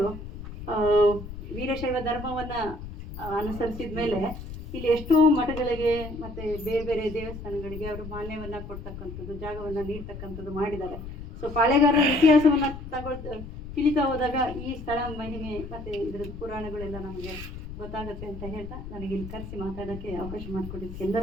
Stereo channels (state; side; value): noise; left; rumble, 10 dB below the sound